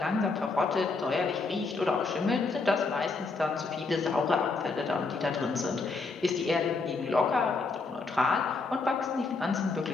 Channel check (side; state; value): right; quieter; 4.0 dB